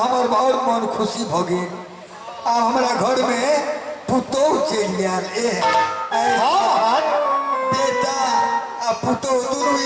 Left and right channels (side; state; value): both; identical; correlation 1.00